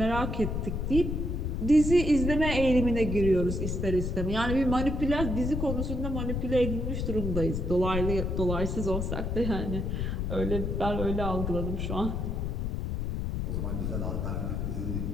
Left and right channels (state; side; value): noise; left; rumble, 1 dB below the sound